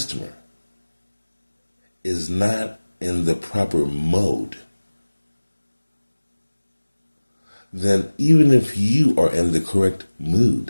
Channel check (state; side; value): inverted; both; correlation -1.00